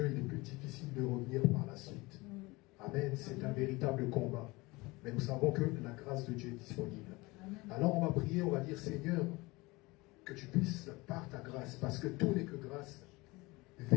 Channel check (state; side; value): quieter; right; 22.9 dB